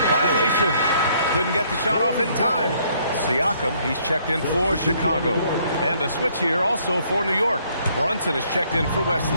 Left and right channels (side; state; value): both; inverted; correlation -0.66